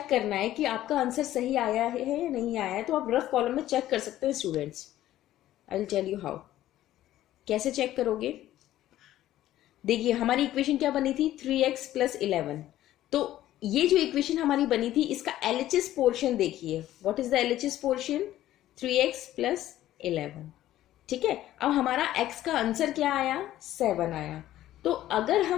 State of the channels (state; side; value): quieter; right; 13.7 dB